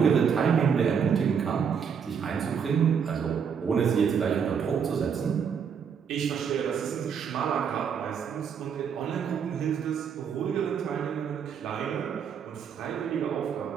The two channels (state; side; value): quieter; left; 7.0 dB